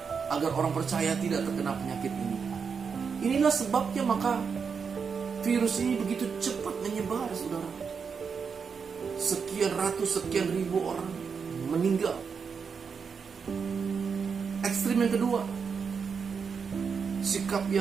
agar orang percaya tidak terkena penyakit ini. Inilah sebabnya maka virus ini begitu cepat menyebar, saudara. Sekian ratus, sekian ribu orang meninggal. Ekstrim yang kedua, sikap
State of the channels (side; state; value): left; quieter; 6.0 dB